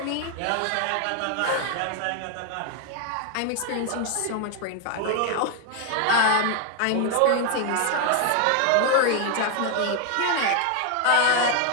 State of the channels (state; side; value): different; both; correlation 0.01